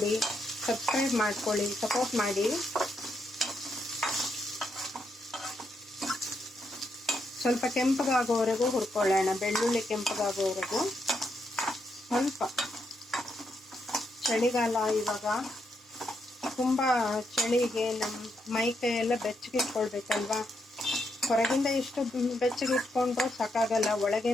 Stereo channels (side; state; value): both; normal; correlation 0.80